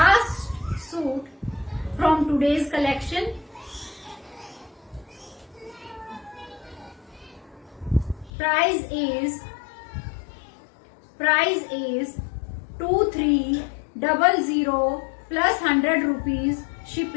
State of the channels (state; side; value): drops out; right; at 8.3 s